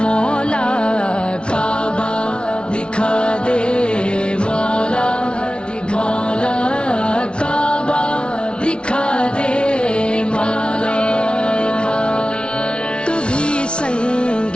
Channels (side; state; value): right; late; 0.057 ms